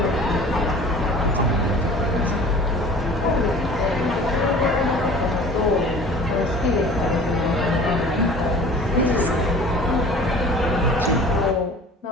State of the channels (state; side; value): normal; both; correlation 0.44